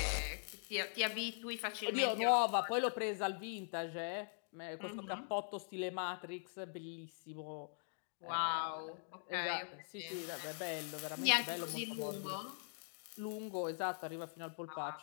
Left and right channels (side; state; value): right; silent; digital silence